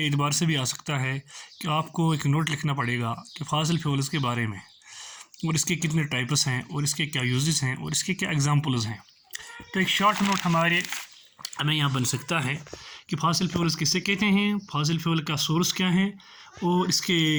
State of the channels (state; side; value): identical; both; correlation 1.00